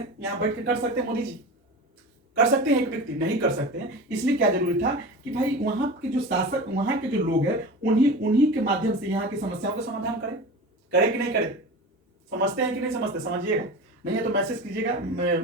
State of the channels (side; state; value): both; normal; correlation 0.32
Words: यहाँ बैठ के कर सकते हैं मोदी जी, कर सकते हैं, एक व्यक्ति नहीं कर सकते हैं। इसलिए क्या जरूरी था कि भाई वहां के जो शासक, वहां के जो लोग हैं, उन्हीं के माध्यम से यहाँ की समस्याओं का समाधान करें। करे कि नहीं करे? समझते हैं कि नहीं समझते? समझिएगा, नहीं है तो मैसेज कीजिएगा,